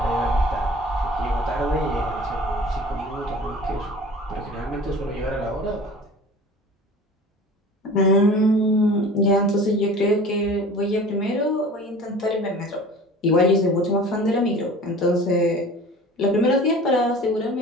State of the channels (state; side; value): normal; both; correlation 0.42